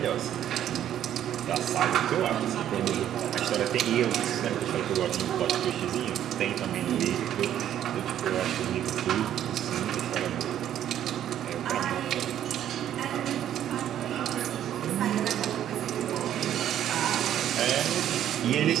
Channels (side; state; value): left; quieter; 10.9 dB